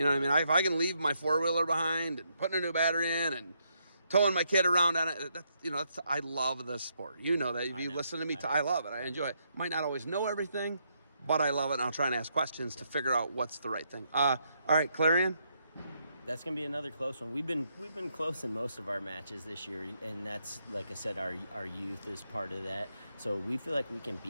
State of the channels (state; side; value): inverted; both; correlation -0.77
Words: know what I mean? If I can leave my 4-wheeler behind and putting a new battery in and towing my kid around on it, I love this sport. You know that. If you listen to me, I love it. I enjoy it. Might not always know everything, but I love it, and I'll try and ask questions to figure out what's the right thing. All right, Clarion? That's going to be another close one. We've been close in most of our matches this year, and that's, like I said, our youth is part of that. So we feel like we can